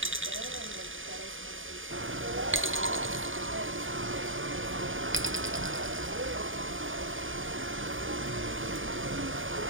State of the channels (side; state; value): left; late; 0.58 ms